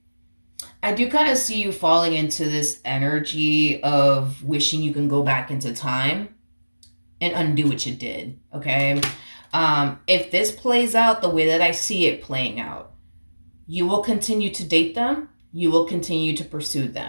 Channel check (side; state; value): both; inverted; correlation -1.00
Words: I do kind of see you falling into this energy of wishing you can go back into time and undo what you did. Okay. If this plays out the way that I see it playing out, you will continue to date them. You will continue to pursue